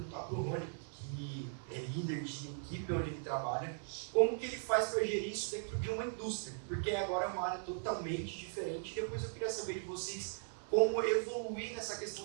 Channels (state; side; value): silent; left; 52 dB below the other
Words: para o Rony, que é líder de equipe onde ele trabalha, como que ele faz para gerir isso dentro de uma indústria? Porque agora é uma área totalmente diferente. E depois eu queria saber de vocês como evoluir nessa